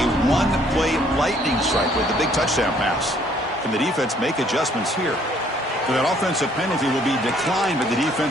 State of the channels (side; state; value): both; normal; correlation 0.62